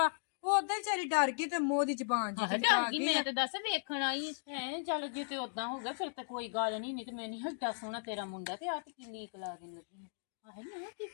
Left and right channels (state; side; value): silent; right; digital silence